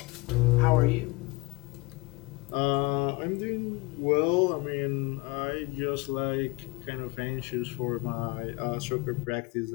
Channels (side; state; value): right; quieter; 25.1 dB